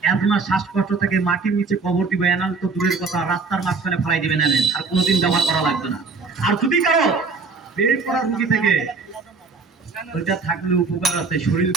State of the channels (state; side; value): quieter; left; 4.4 dB